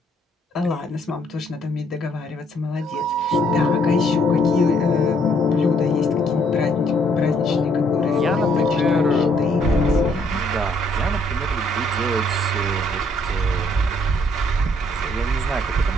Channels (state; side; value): normal; both; correlation 0.67